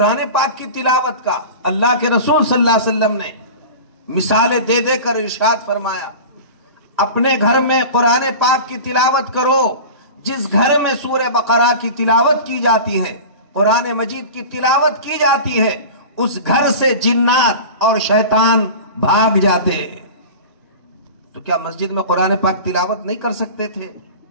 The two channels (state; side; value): inverted; both; correlation -0.34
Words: پاک کی تلاوت کا اللہ کے رسول صلی اللہ علیہ وسلم نے مثالیں دے دے کر ارشاد فرمایا، اپنے گھر میں قرآن پاک کی تلاوت کرو۔ جس گھر میں سورہ بقرہ کی تلاوت کی جاتی ہے، قرآن مجید کی تلاوت کی جاتی ہے، اس گھر سے جنات اور شیطان بھاگ جاتے ہیں۔ تو کیا مسجد میں قرآن پاک تلاوت نہیں کر سکتے تھے؟